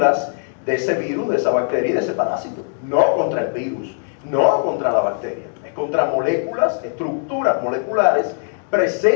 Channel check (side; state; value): right; silent; digital silence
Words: de ese virus, de esa bacteria y de ese parásito. No contra el virus, no contra la bacteria. Es contra moléculas, estructuras moleculares